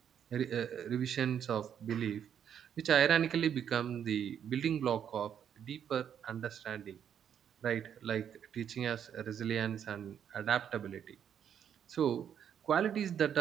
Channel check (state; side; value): quieter; left; 8.8 dB